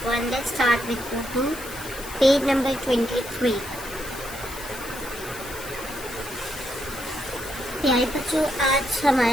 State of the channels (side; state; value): left; noise; hiss, 13 dB below the sound